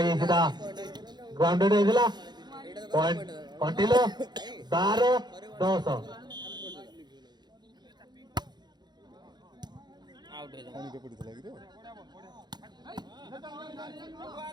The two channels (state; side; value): late; left; 0.21 ms